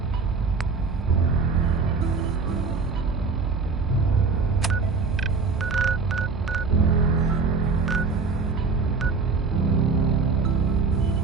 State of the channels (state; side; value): quieter; left; 4.6 dB